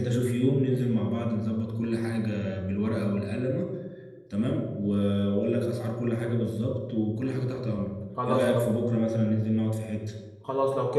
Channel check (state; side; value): identical; both; correlation 1.00